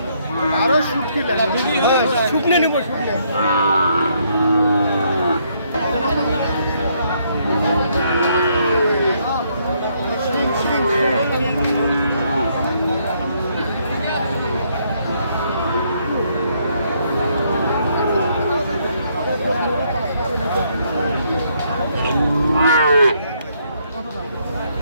আরো শুকনে নেব, শুকনে।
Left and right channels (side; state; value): both; inverted; correlation -0.71